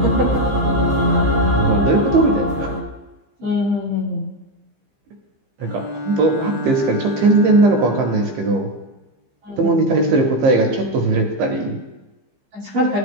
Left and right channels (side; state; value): left; late; 15 ms